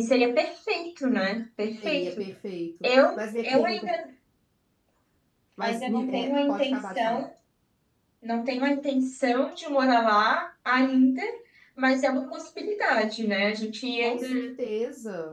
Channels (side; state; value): both; identical; correlation 1.00